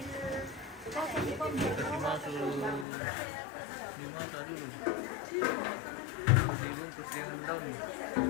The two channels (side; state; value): right; drops out; at 2.9 s